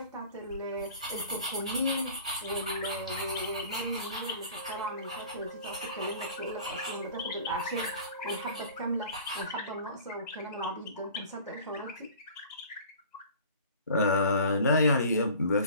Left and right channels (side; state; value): both; inverted; correlation -0.44